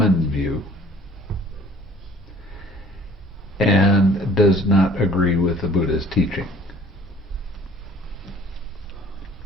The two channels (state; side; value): normal; both; correlation 0.53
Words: view and does not agree with the Buddha's teaching.